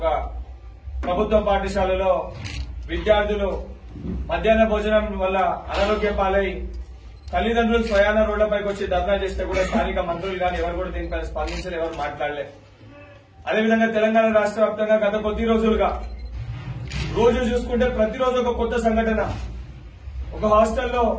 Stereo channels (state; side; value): identical; both; correlation 1.00